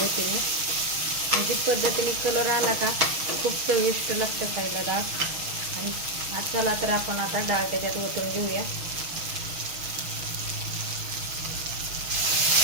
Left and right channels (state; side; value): late; left; 6.3 ms